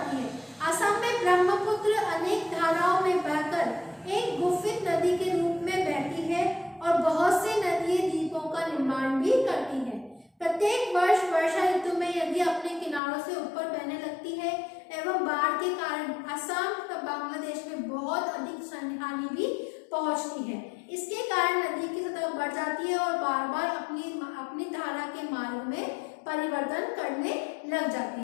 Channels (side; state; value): right; drops out; at 13.0 s